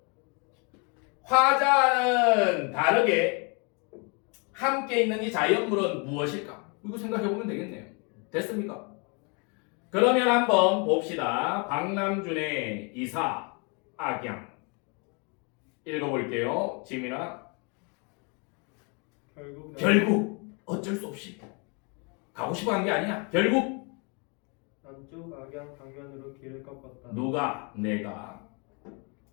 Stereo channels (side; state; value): right; quieter; 34.0 dB